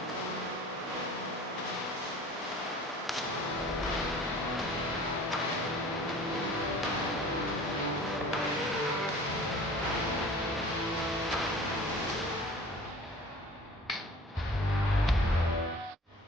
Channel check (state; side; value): normal; both; correlation 0.45